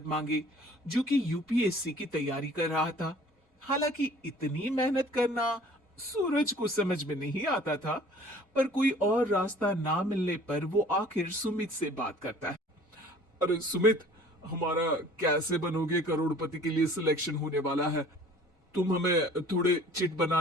मांगे, जो कि यूपीएससी की तैयारी कर रहा था। हालांकि इतनी मेहनत करना सूरज को समझ में नहीं आता था, पर कोई और रास्ता ना मिलने पर वो आखिर सुमित से बात करता है। अरे सुमित, हमारा कैसे बनोगे करोड़पति के लिए सिलेक्शन होने वाला है। तुम हमें थोड़े चिट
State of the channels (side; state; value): both; normal; correlation 0.50